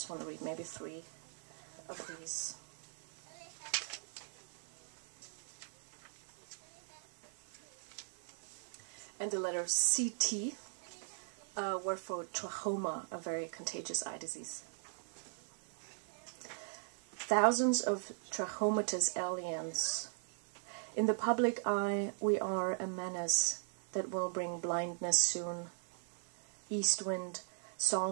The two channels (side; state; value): left; silent; 51 dB below the other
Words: want to read maybe 3 of these. And the letter CT were for trachoma, a very contagious eye disease. Thousands of trachomatous aliens. In the public eye, we are a menace that will bring blindness soon. East wind,